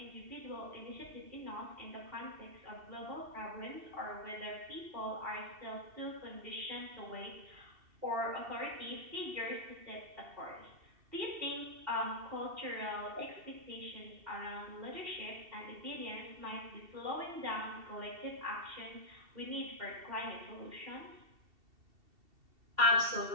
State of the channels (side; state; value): left; late; 2.7 ms